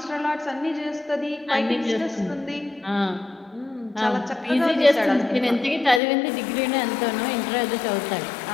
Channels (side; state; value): right; drops out; at 6.0 s